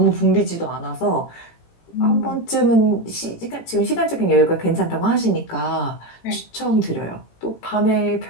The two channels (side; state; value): right; late; 18 ms